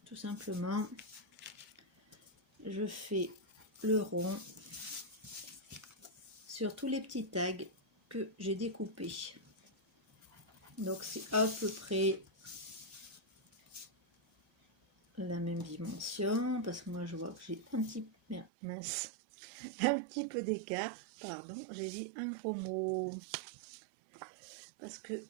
Tout simplement, je fais le rond sur tous les petits tags que j'ai découpés. Donc c'est à peu près la même dimension, parce que moi je vois que j'ai un petit mince, un petit peu d'écart, pardon, j'ai dit un gros mot parce que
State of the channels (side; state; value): left; drops out; at 18.5 s